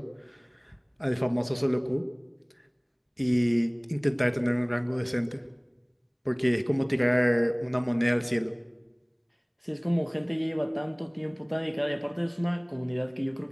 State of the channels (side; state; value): both; identical; correlation 1.00